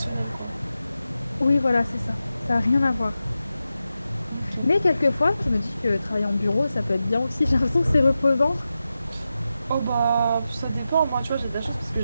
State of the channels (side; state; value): both; inverted; correlation -0.91